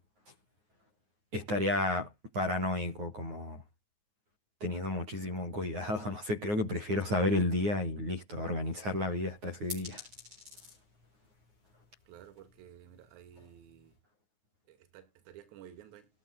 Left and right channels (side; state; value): left; late; 9.5 ms